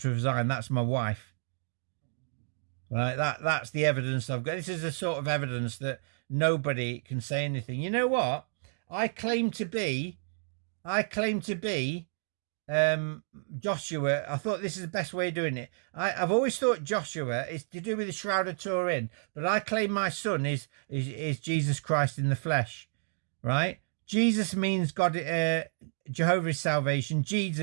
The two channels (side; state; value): left; silent; digital silence